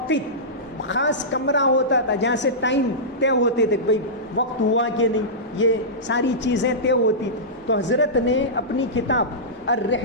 خاص کمرہ ہوتا تھا جہاں سے ٹائم طے ہوتے تھے، بھائی وقت ہوا کہ نہیں، یہ ساری چیزیں طے ہوتی تھی. تو حضرت نے اپنی کتاب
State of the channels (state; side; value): normal; both; correlation -0.16